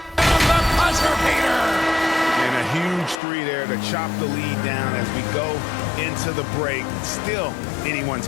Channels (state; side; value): drops out; right; at 3.2 s